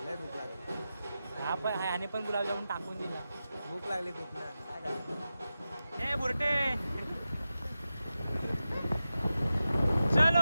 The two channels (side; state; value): both; inverted; correlation -0.92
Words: लय भूक लागली. हा पण ह्याने पण गुलाबजामुन टाकून दिला. भूक लागली खूप ना. काय करायचं. हे बुरटे